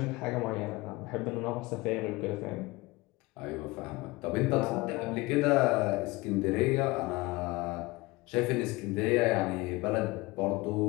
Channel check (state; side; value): quieter; right; 22.3 dB